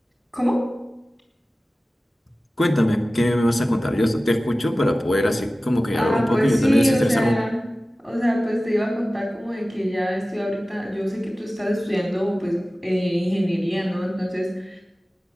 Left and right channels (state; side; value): normal; both; correlation 0.97